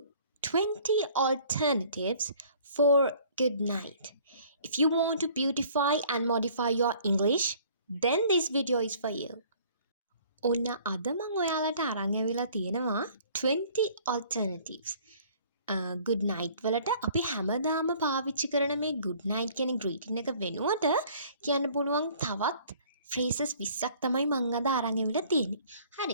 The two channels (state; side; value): inverted; both; correlation -0.54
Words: 20 alternatives for good night. If you want to beautify and modify your English, then this video is for you. ඔන්න අද මම ඔයාලට අරන් ඇවිල්ලා තියෙනවා 20 alternatives. good night වලට අපි හැමදාම පාවිච්චි කරන මේ good night කියන greeting එක වෙනුවට කියන්න පුළුවන් තවත් phrases 20ක් තමයි මම අද අරන් ඇවිල්ලා තියෙන්නේ.